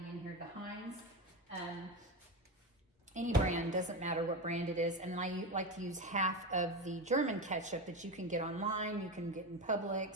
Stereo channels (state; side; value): normal; both; correlation 0.19